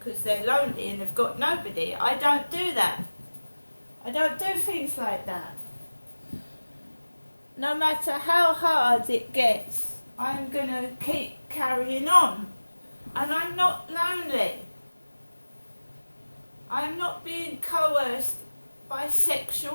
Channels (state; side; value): inverted; both; correlation -1.00